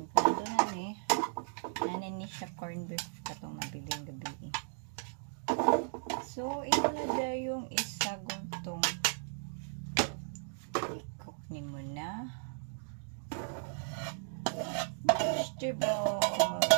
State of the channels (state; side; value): silent; left; digital silence